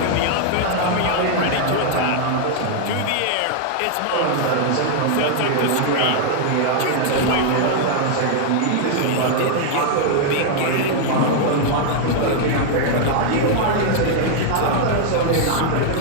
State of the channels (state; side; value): different; both; correlation 0.00